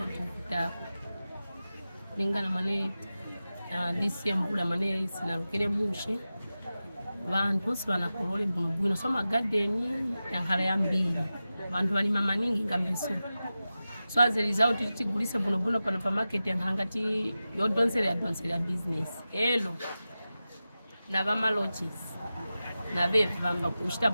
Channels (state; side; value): inverted; both; correlation -0.94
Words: tukitako. Lingana mane disi mbula mane sinarukire mushi. Vantu sibana kolole bwino soma garden yankhala yambiri. Vantu bali mama ningi ngambiso. So as a result tigulise buno pano pa market yankangati yodonsera business. Hello. Na vama lodges. Na vevi vamba kushita